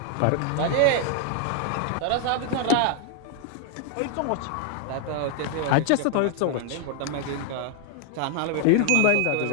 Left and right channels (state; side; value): different; both; correlation 0.00